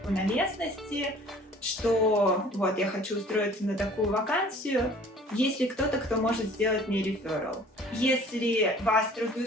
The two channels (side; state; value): both; normal; correlation 0.50